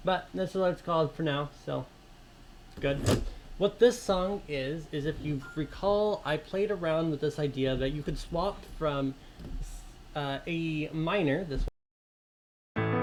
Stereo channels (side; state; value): both; identical; correlation 1.00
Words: But this is what it's called for now, so good. What this song is if you recall, I played around with this idea that you could swap from a minor, this one,